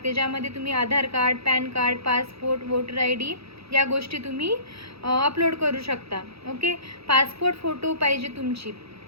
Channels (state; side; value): late; left; 0.77 ms